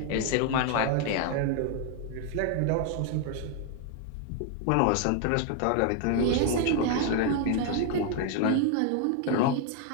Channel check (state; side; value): different; both; correlation 0.00